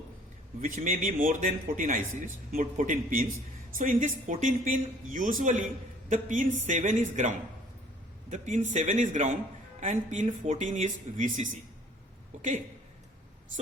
which may be more than 14 ICs, more 14 pins. So in this 14 pin, usually the pin 7 is ground. The pin 7 is ground and pin 14 is VCC. Okay.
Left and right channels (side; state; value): both; normal; correlation 0.55